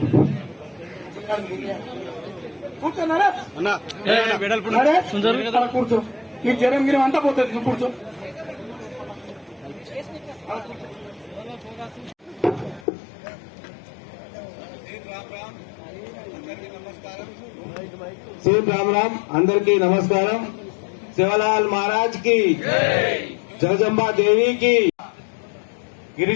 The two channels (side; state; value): right; drops out; at 12.9 s